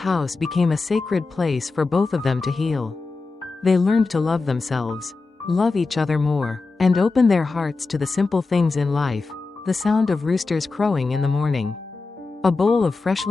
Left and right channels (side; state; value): right; quieter; 3.9 dB